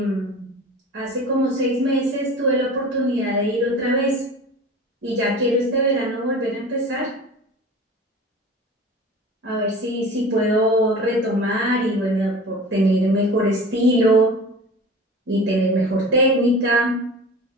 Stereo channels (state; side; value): normal; both; correlation 0.37